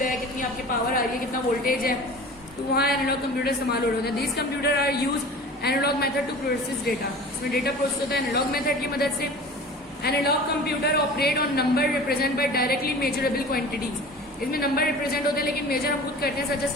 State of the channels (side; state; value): both; normal; correlation 0.39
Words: है, कितनी आपकी पावर आ रही है, कितना वोल्टेज है, तो वहाँ एनालॉग कंप्यूटर इस्तेमाल हो रहे होते हैं। These computer are use analog method to process data. इसमें डेटा प्रोसेस होता है एनालॉग मेथड की मदद से। Analog computer operate on number represent by directly measurable quantities. इसमें नंबर रिप्रेजेंट होते हैं लेकिन मेजर हम खुद करते हैं, सच एज